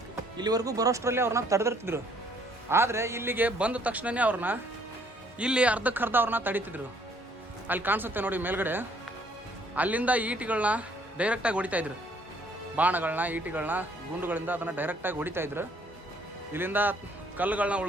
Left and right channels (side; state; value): both; normal; correlation 0.63